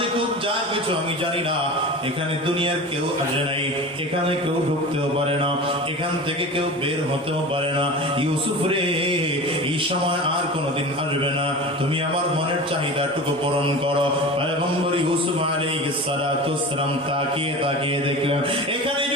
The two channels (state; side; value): normal; both; correlation 0.33